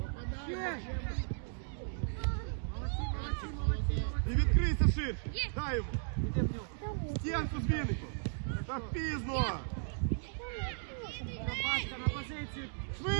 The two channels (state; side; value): silent; left; digital silence